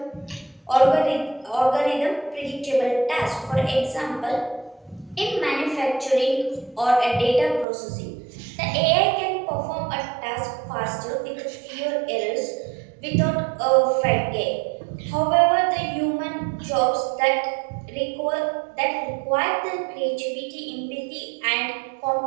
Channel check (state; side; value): drops out; left; at 7.7 s